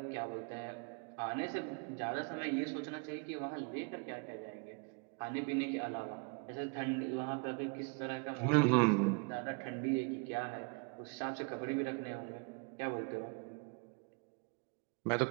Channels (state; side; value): quieter; left; 34.2 dB